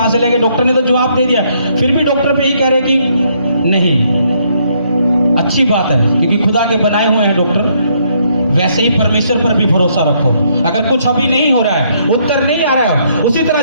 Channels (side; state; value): both; inverted; correlation -0.70